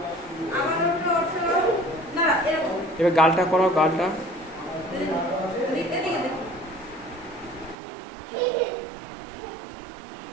এবার গালটা করাও, গালটা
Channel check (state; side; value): drops out; left; at 7.8 s